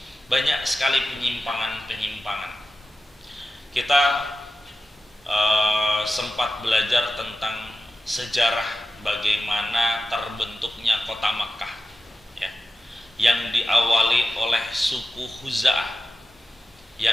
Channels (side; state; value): both; normal; correlation 0.93